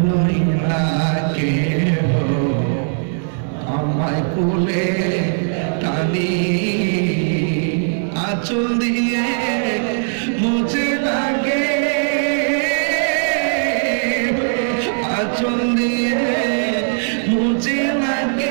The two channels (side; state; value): left; silent; digital silence